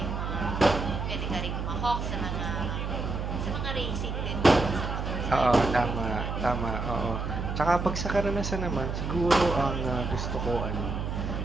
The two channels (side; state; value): right; noise; hum, 3 dB below the sound